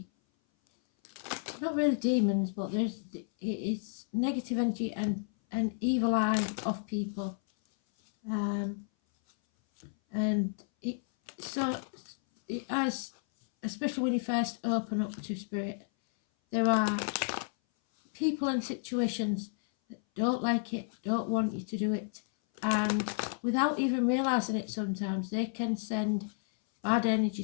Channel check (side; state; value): right; silent; 57 dB below the other